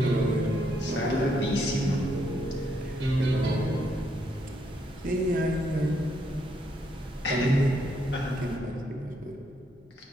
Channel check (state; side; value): normal; both; correlation 0.75